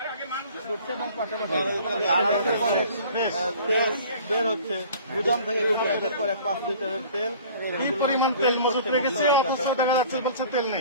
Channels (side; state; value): both; inverted; correlation -0.48